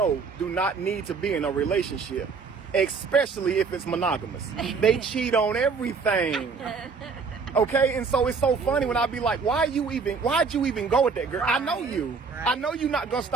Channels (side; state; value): left; quieter; 5.1 dB